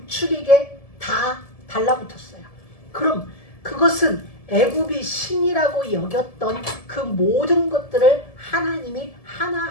다 달라붙었어요. 그럼 그것은 애굽이 신이라고 여겼던 그 모든 것들을 하나님이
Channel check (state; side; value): late; right; 1.7 ms